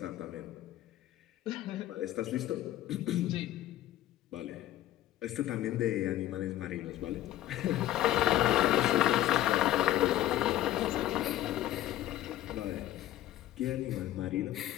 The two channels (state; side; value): quieter; right; 13.9 dB